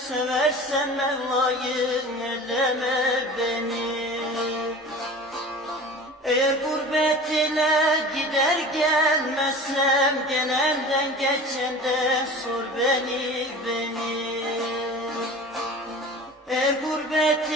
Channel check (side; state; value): both; normal; correlation 0.38